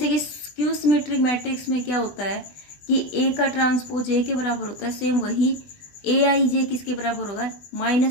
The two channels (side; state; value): right; late; 20 ms